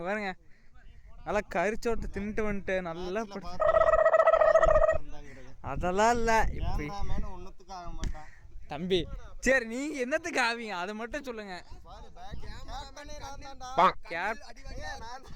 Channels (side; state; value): both; identical; correlation 1.00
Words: பாருங்க, நல்லா கரிச்சோட்டு தின்ட்டு வந்துட்டு நல்லா அதெல்லாம் இல்லை. இப்படி ஒன்னுத்துக்கு ஆக மாட்டான் தம்பி. சரி, நீங்க என்னத்துக்கு ஆவீங்க அதை மட்டும் சொல்லுங்க.